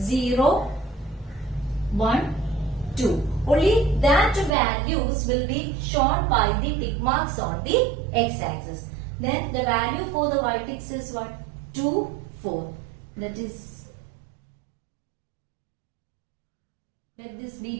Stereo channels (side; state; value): left; drops out; at 4.5 s